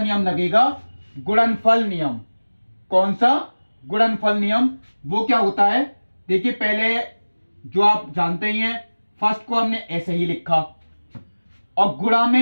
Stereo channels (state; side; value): inverted; both; correlation -1.00